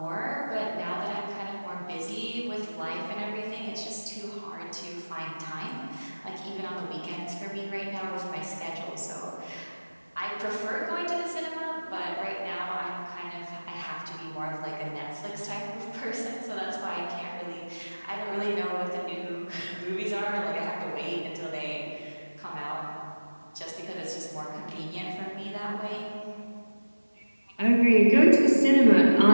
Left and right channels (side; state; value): both; inverted; correlation -1.00